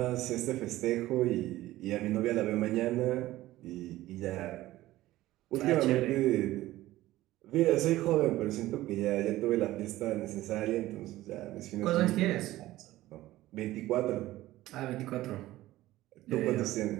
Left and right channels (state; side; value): quieter; left; 16.2 dB